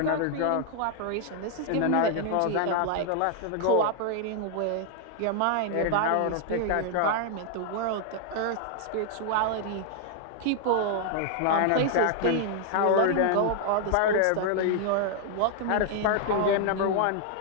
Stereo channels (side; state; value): both; different; correlation -0.01